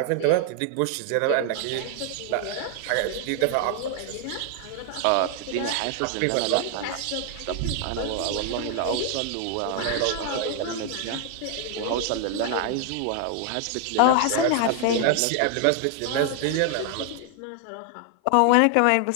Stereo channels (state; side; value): different; both; correlation 0.00